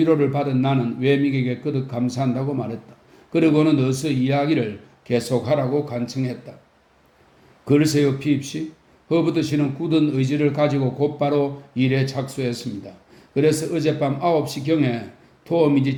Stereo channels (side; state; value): both; identical; correlation 1.00